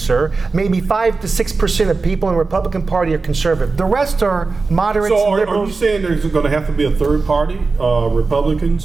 Maybe 5 to 6% of people in the Republican Party are conservative. The rest are moderates, So are you liberals. saying there's going to have to be a third party, Republicans,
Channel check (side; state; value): left; quieter; 4.1 dB